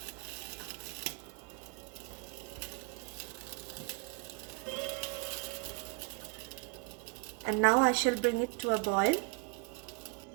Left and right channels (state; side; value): quieter; left; 30.3 dB